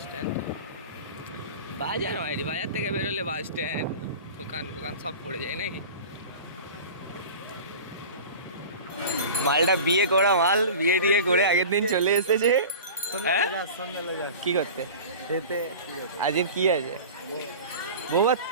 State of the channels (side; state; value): both; inverted; correlation -0.36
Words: স্ট্যান্ড বাজার মাইরি, বাজার থেকে বেরোলে বাস স্ট্যান্ড, দোকান ফোকান সব পড়ে যায় নাকি? মালটা বিয়ে করা মাল, বিয়ে টিয়ে করে আগের দিন চলে এসেছে। কি করতে? আজকের কি আছে? বৌমা